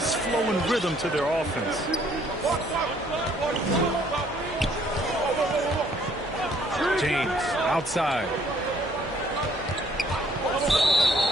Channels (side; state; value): both; normal; correlation 0.63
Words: flow and rhythm to their offense. James outside.